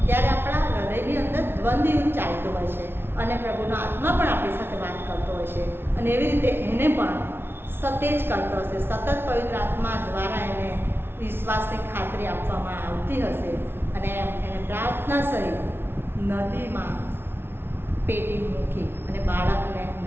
ત્યારે આપણા હૃદયની અંદર દ્વંદ્વ યુદ્ધ ચાલતું હોય છે અને પ્રભુનો આત્મા પણ આપણી સાથે વાત કરતો હોય છે. અને એવી રીતે એને પણ સતેજ કરતો હશે, સતત પવિત્ર આત્મા દ્વારા એને વિશ્વાસની ખાતરી આપવામાં આવતી હશે. અને એને પ્રાર્થના સહિત નદીમાં પેટી મૂકી અને બાળકને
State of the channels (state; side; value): late; left; 0.11 ms